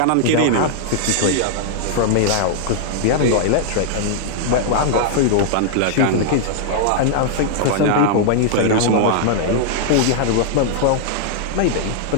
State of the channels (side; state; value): both; different; correlation -0.01